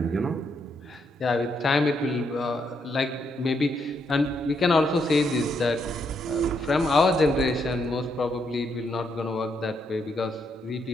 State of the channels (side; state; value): both; normal; correlation 0.77